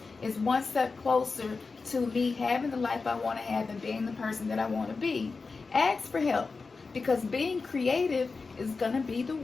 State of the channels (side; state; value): right; quieter; 4.3 dB